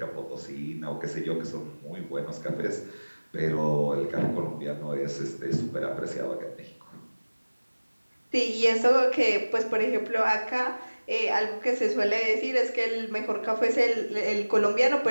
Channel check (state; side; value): inverted; both; correlation -1.00